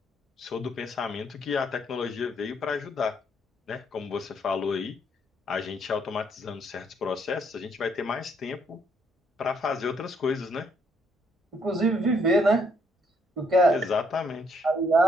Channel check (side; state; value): both; normal; correlation 0.70